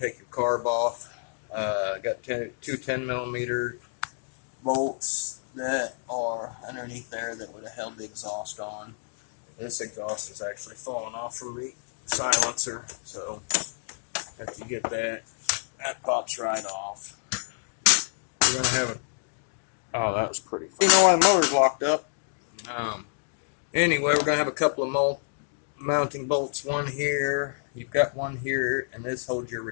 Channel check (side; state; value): right; silent; digital silence